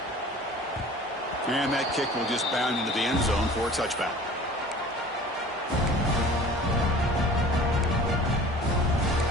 And that kick will just bound into the end zone for a touchback.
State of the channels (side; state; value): both; normal; correlation 0.44